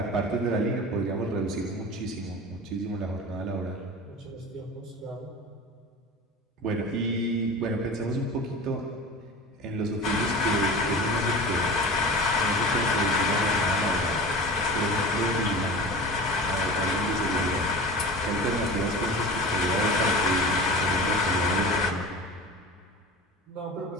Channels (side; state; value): both; normal; correlation 0.34